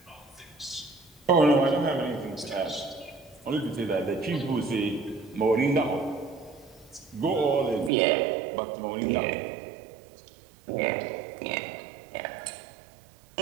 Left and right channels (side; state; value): left; drops out; at 7.9 s